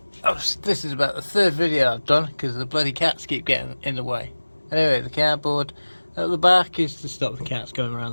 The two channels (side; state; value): both; inverted; correlation -1.00